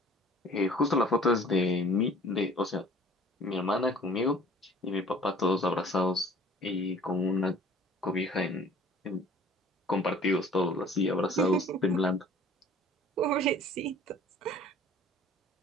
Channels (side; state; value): both; normal; correlation 0.50